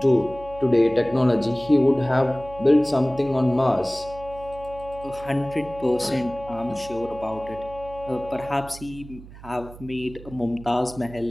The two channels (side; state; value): right; noise; hum, 17 dB below the sound